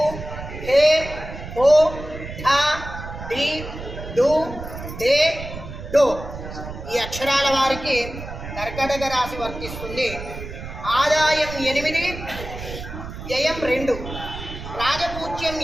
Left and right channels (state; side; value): noise; right; rumble, 10 dB below the sound